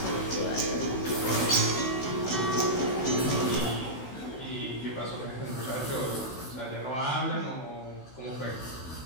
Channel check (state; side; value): late; right; 16 ms